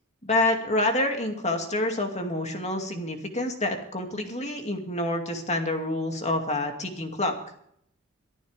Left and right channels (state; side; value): normal; both; correlation 0.10